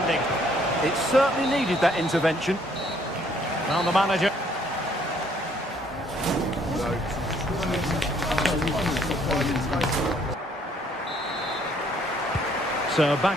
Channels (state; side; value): normal; both; correlation 0.64